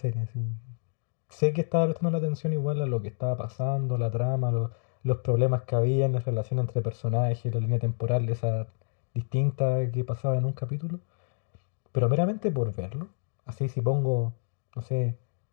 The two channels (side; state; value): right; silent; digital silence